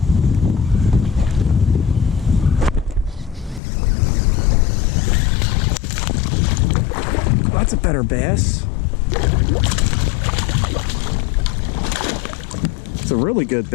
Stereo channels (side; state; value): right; drops out; at 3.6 s